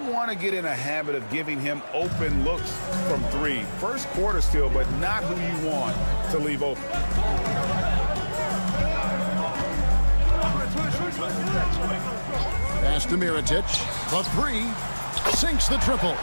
want to get in a habit of giving him open looks from three. First quarter still, but not who you want to leave open. Pass to Mirotic. The three. Sinks the triple.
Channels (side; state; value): both; inverted; correlation -1.00